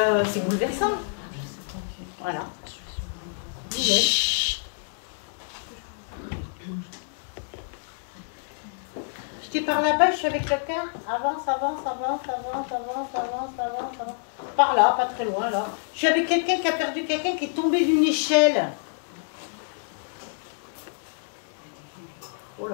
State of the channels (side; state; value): right; silent; 60 dB below the other